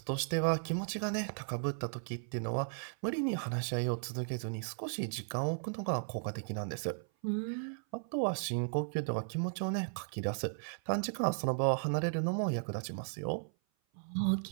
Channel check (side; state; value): left; silent; 54 dB below the other